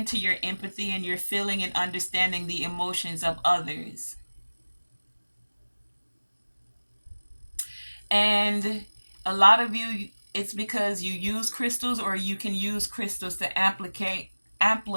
your empathy and you're feeling and understanding the emotions of others. And a lot of you It's because you use crystals, or you can use crystals to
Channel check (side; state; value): both; inverted; correlation -1.00